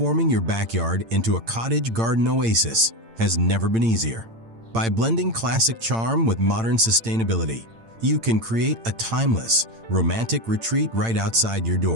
your backyard into a cottage garden oasis has never been easier. By blending classic charm with modern sustainability, you can create a timeless, romantic retreat right outside your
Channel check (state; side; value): late; left; 8.8 ms